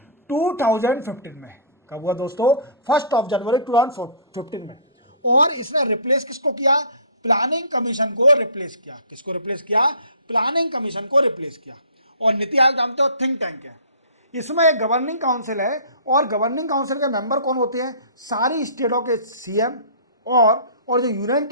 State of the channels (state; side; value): inverted; both; correlation -0.44